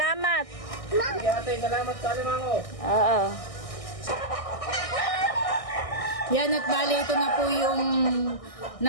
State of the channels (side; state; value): right; late; 1.6 ms